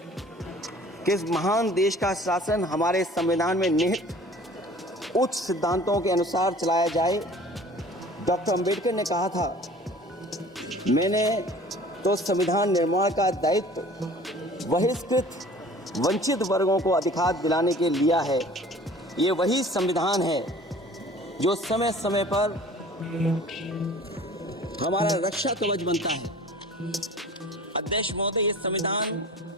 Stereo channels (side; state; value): both; normal; correlation 0.47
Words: कि इस महान देश का शासन हमारे संविधान में निहित उच्च सिद्धांतों के अनुसार चलाया जाए। डॉक्टर अंबेडकर ने कहा था, मैंने तो संविधान निर्माण का दायित्व बहिष्कृत वंचित वर्गों को अधिकार दिलाने के लिया है। ये वही संविधान है जो समय समय पर हमारा रक्षा कवच बनता है। अध्यक्ष महोदय, ये संविधान